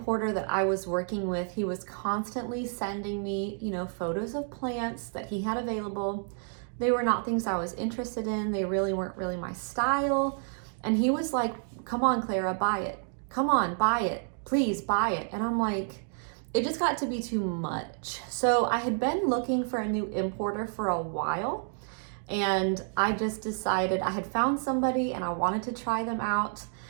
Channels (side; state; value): left; silent; 58 dB below the other